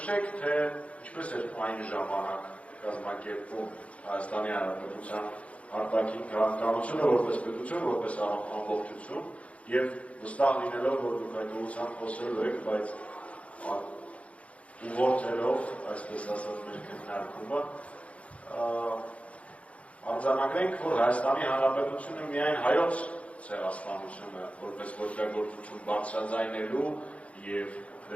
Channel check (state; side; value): late; right; 0.064 ms